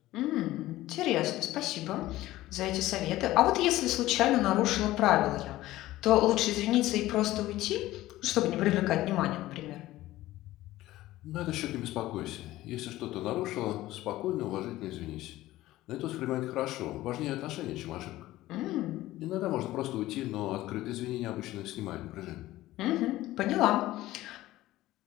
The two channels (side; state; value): right; quieter; 16.2 dB